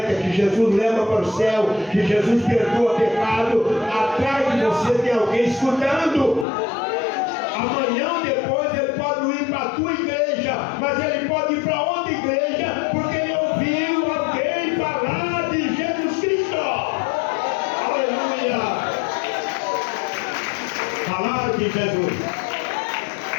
que Jesus leva para o céu, que Jesus perdoa pecado, atrás de você tem alguém escutando. Amanhã ou depois ele pode ir para a tua igreja, mas ele pode ir para outra igreja, porque ele ouviu alguém falar de Jesus Cristo. Aleluia! Falar de Jesus.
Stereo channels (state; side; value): drops out; right; at 6.5 s